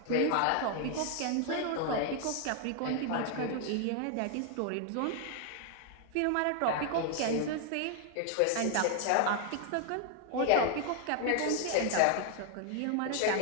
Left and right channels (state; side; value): different; both; correlation 0.00